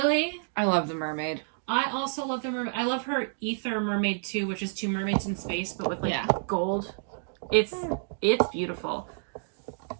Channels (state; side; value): silent; left; digital silence